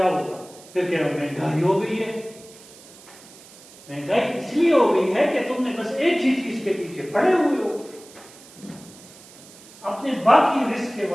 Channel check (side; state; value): right; noise; hiss, 21 dB below the sound